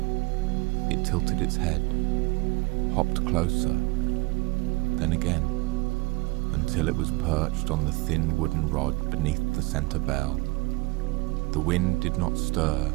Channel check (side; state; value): left; quieter; 24.0 dB